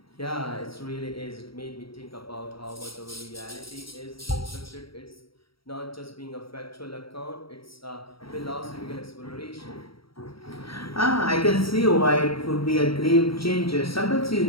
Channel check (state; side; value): late; right; 0.75 ms